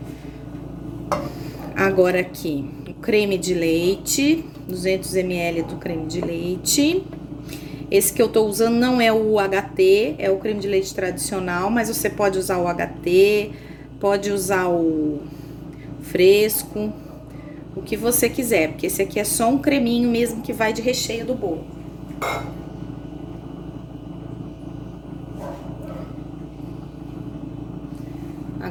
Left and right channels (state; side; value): identical; both; correlation 1.00